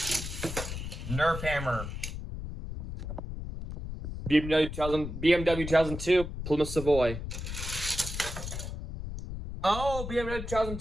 Nerf Hammer. BMW 2002, Plymouth Savoy. Oh, BMW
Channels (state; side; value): noise; left; rumble, 7 dB below the sound